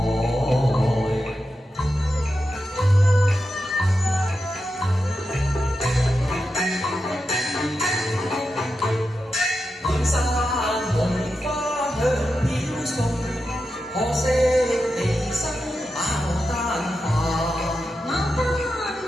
滿山紅花香飄送，可惜離生牡丹花。牡丹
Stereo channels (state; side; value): normal; both; correlation 0.89